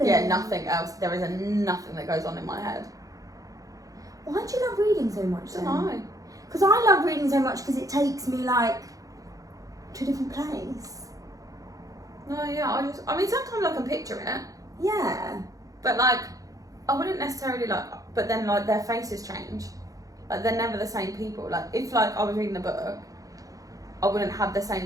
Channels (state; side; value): late; left; 0.17 ms